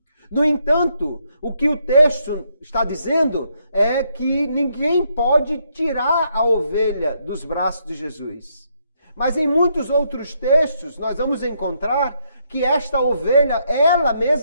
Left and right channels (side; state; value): both; inverted; correlation -0.75